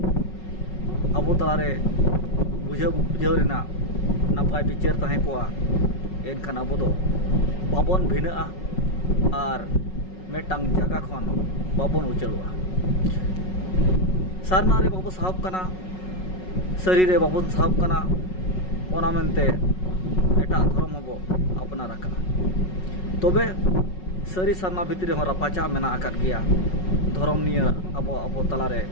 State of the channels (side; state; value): right; late; 5.4 ms